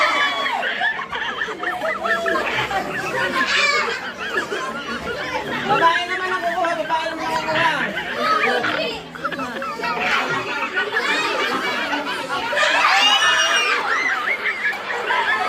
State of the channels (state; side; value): identical; both; correlation 1.00